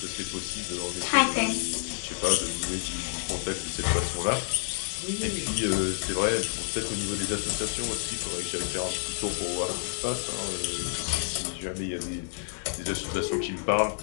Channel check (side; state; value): right; silent; digital silence